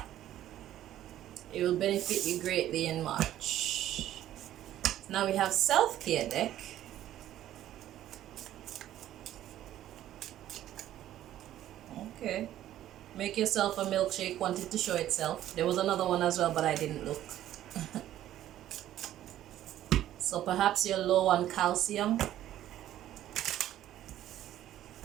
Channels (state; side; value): quieter; left; 12.6 dB